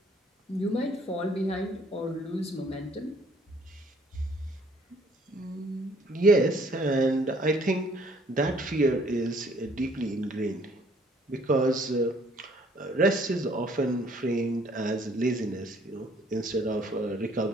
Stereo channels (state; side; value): normal; both; correlation 0.61